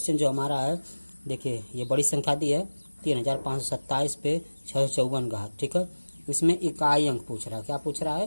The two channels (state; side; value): inverted; both; correlation -1.00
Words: जो हमारा है, देखिए ये बड़ी संख्या दी है 3527 पे 654 घात, ठीक है। इसमें इकाई अंक पूछ रहा है, क्या पूछ रहा